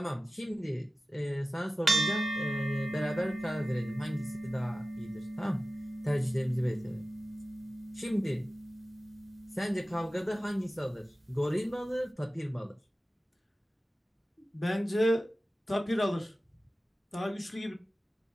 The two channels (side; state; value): both; normal; correlation 0.96